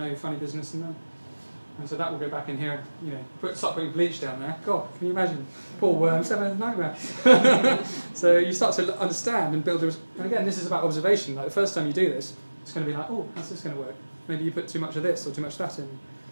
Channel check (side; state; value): both; inverted; correlation -1.00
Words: funny business in them. And so that will go back in here, start putting bleach down there. God, can you imagine? Poor worms having a nightmare. So you start to understand and build. And again, this is about observation. Like the first time you do this, it's going to be like, oh, how's this going to work? Maybe you put too much of this or too much of that in.